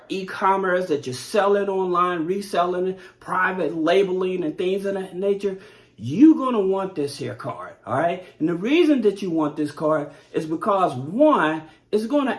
e-commerce, that you're selling online, reselling it, private labeling and things of that nature, you're going to want this here card, all right? And the reason that you want this card is because, one, it's going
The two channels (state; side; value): identical; both; correlation 1.00